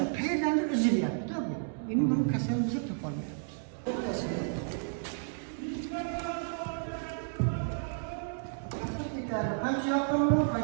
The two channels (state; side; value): silent; left; digital silence